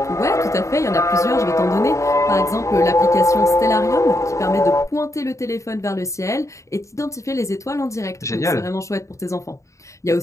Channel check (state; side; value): late; right; 0.15 ms